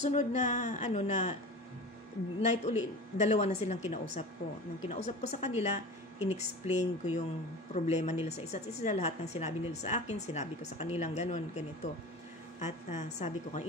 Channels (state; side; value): normal; both; correlation 0.34